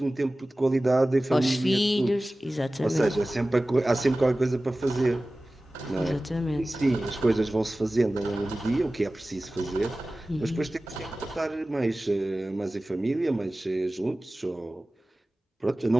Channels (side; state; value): both; normal; correlation 0.97